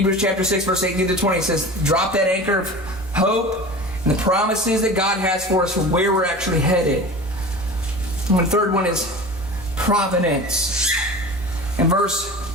chapter 6, verse 18 to 20 says, drop that anchor of hope and the promises that God has for us for where we're actually headed. And the third one is providence. In verse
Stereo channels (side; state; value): both; normal; correlation 0.35